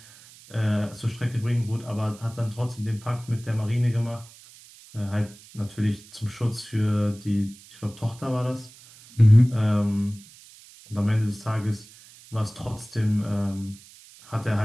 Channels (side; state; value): right; noise; hiss, 22 dB below the sound